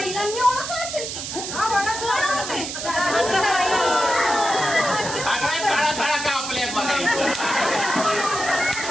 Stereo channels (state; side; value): noise; right; hiss, 6 dB below the sound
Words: ओळखलं असेल की. सगळ्या साळा कापल्या बघायचं.